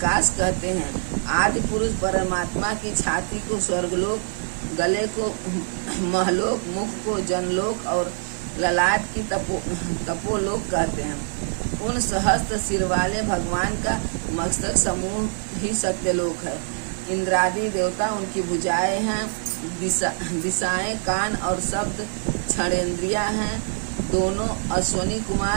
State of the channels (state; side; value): silent; left; 62 dB below the other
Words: कहते हैं। आदि पुरुष परमात्मा की छाती को स्वर्गलोक, गले को महलोक, मुख को जनलोक और ललाट की तपोलोक कहते हैं। उन सहस्त्र सिर वाले भगवान का मस्तक समूह ही सत्यलोक है। इंद्रादि देवता उनकी भुजाएं हैं, दिशाएं कान और शब्द क्षणेंद्रियां हैं। दोनों अश्वनी